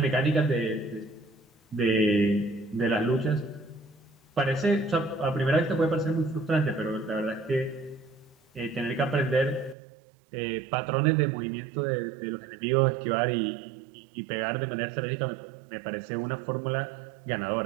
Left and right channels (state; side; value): drops out; left; at 9.8 s